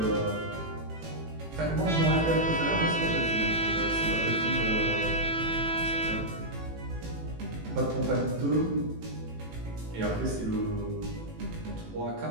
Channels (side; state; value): left; late; 18 ms